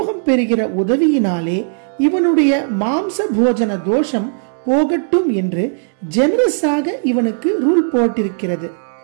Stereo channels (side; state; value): left; silent; 68 dB below the other